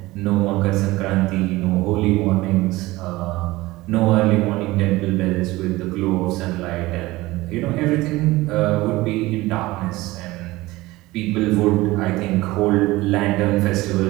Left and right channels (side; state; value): left; quieter; 19.3 dB